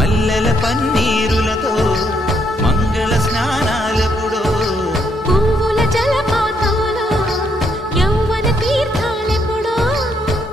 పన్నీరులతో మంగళ స్నానాలెప్పుడో పువ్వుల జలపాతంలో యౌవన తీర్థాలెప్పుడో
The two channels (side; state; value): both; normal; correlation 0.74